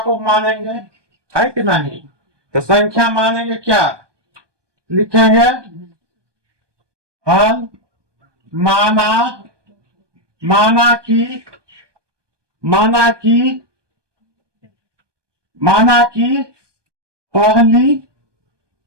मानेंगे, है कि नहीं? तो संख्या मानेंगे, क्या लिखेंगे? हल माना कि पहली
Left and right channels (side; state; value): left; late; 1.2 ms